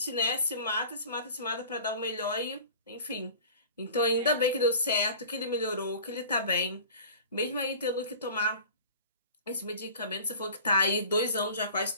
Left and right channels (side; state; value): both; inverted; correlation -0.42